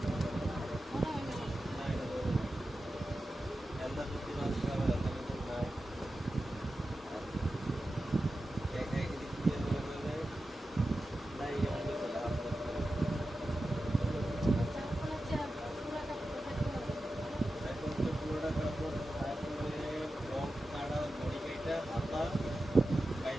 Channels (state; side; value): normal; both; correlation 0.92